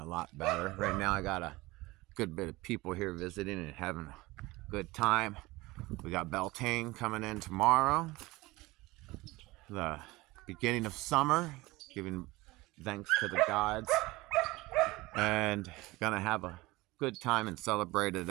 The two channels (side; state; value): left; quieter; 20.8 dB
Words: a lot better. Right now I got a good bit of people here visiting and having a good time. We got Beltane coming in tomorrow. the beginning of summer, giving thanks to the gods, and gonna have a good time and celebrate it